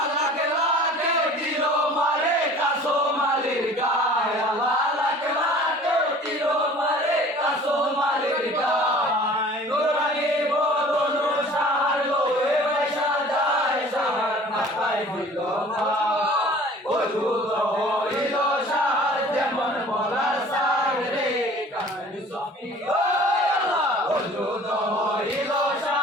লাকে লাকে দিল মারে কাসো মালির গায় আল্লাহ লাকে লাকে দিল মারে কাসো মালির গায় নুরানি বদন শাহর লোয়ে পয়সা যায় শাহর মাথায় দিল ভাই ওজুদ হইল শাহর যেমন বলার সার রে কামনি সফি ওজুদ হইল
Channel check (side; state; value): both; normal; correlation 0.47